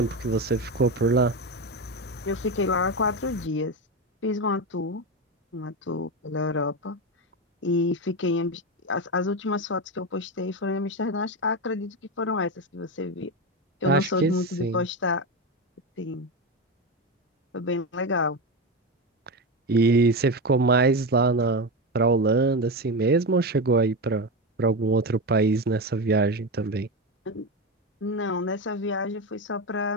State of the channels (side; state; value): both; normal; correlation 0.16